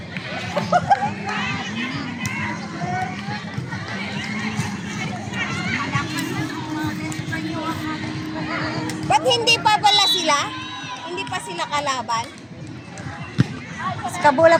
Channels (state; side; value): identical; both; correlation 1.00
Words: Ba't hindi pa pala sila? Hindi pa sila kalaban? Kabula